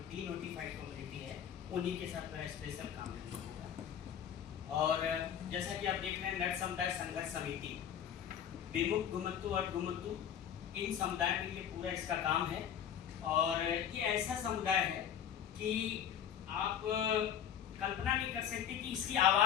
डी नोटिफाइड कम्युनिटी है उन्हीं के साथ मेरा स्पेशल काम है। और जैसा कि आप देख रहे हैं, नट समुदाय संघर्ष समिति विमुक्त घुमंतु और घुमंतु इन समुदाय में ये पूरा इसका काम है। और ये ऐसा समुदाय है कि आप कल्पना नहीं कर सकते कि इसकी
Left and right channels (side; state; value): right; quieter; 9.2 dB